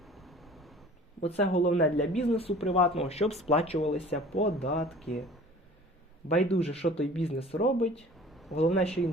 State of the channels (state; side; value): normal; both; correlation 0.46